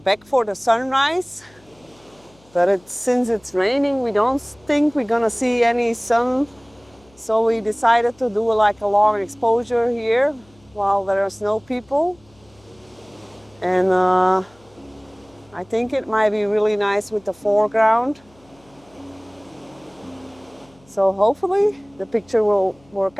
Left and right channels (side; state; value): left; noise; hum, 30 dB below the sound